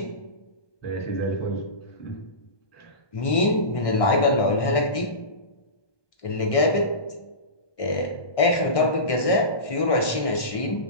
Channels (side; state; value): right; late; 1.2 ms